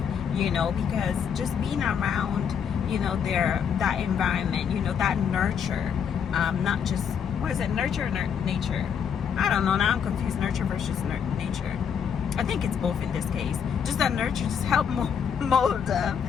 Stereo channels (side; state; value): right; quieter; 7.5 dB